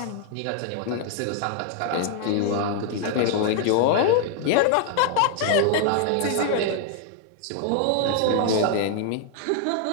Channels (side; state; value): both; different; correlation 0.00